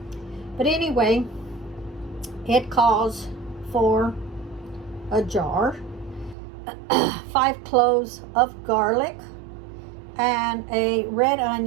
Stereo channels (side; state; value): left; drops out; at 6.4 s